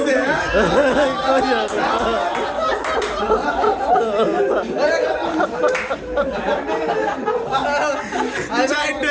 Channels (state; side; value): identical; both; correlation 1.00